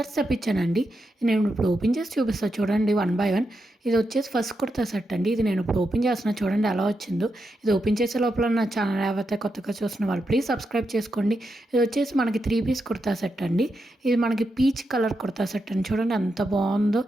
తెప్పించానండి. నేను ఇప్పుడు ఓపెన్ చేసి చూపిస్తా చూడండి వన్ బై వన్. ఇది వచ్చేసి ఫస్ట్ కుర్తా సెట్ అండి. ఇది నేను ఇప్పుడు ఓపెన్ చేస్తున్నా చూడండి ఎలా వచ్చిందో. ఇది ఓపెన్ చేసే లోపల నా ఛానల్ ఏవైతే కొత్తగా చూస్తున్న వాళ్ళు ప్లీజ్ సబ్స్క్రైబ్ చేసుకోండి. ఇది వచ్చేసి మనకి 3 పీస్ కుర్తా సెట్ అండి. ఇది మనకి పీచ్ కలర్ కుర్తా సెట్ అండి. చూడండి ఎంత బాగుందో,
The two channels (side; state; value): both; normal; correlation 0.85